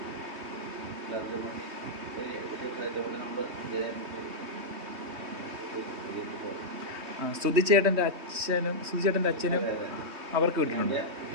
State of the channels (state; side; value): late; left; 3.2 ms